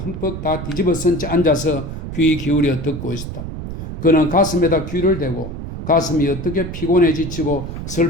다 뒤집어 쓴 채 앉아서 귀 기울여 듣고 있었다. 그는 가슴에다 귀를 대고 가슴이 어떻게 피곤해 지치고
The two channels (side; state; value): right; noise; rumble, 7 dB below the sound